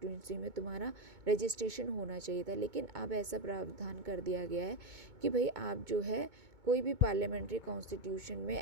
में तुम्हारा रजिस्ट्रेशन होना चाहिए था, लेकिन अब ऐसा प्रावधान कर दिया गया है कि भाई आप जो है कोई भी पार्लियामेंट्री कॉन्स्टिट्यूशन में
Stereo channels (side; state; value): left; late; 2.2 ms